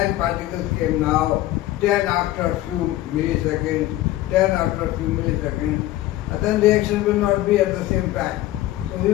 particles came now, 10 after a few milliseconds, 10 after a few milliseconds, then reaction will not be at the same time. So we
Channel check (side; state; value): right; quieter; 15.4 dB